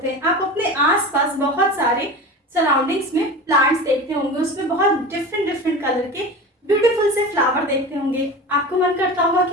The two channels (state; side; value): normal; both; correlation 0.31